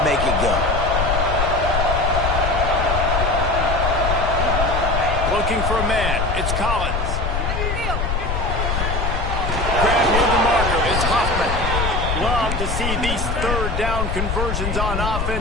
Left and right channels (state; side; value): noise; left; rumble, 1 dB below the sound